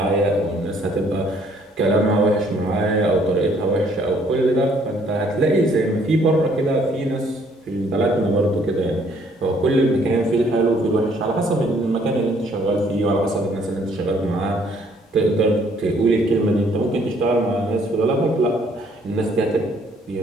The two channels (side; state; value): both; normal; correlation 0.64